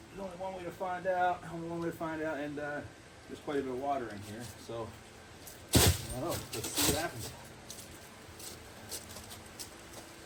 there's only one way to find out. And there's quite a bit of water in here, so I don't know. Let's see what happens.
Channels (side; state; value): both; identical; correlation 1.00